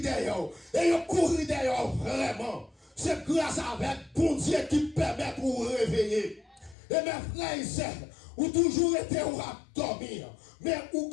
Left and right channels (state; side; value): drops out; right; at 6.8 s